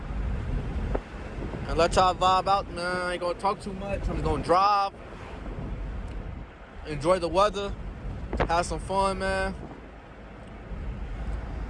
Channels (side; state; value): both; identical; correlation 1.00